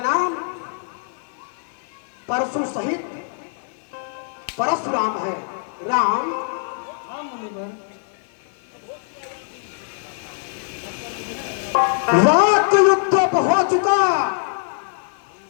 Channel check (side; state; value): right; silent; 57 dB below the other